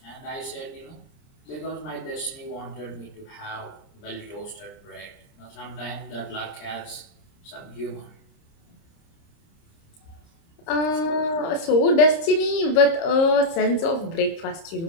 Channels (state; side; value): late; right; 30 ms